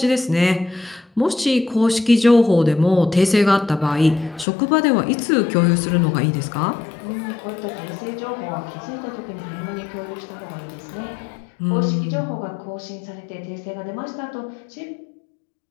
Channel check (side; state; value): right; drops out; at 4.5 s